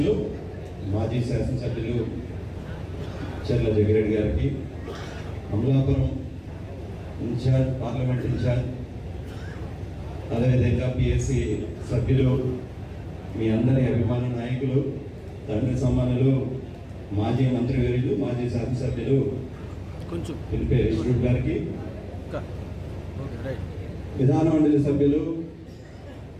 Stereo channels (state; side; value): identical; both; correlation 1.00